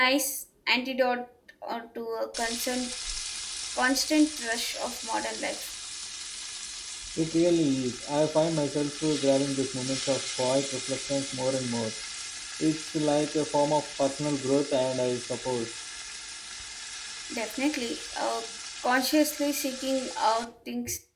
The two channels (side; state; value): both; identical; correlation 1.00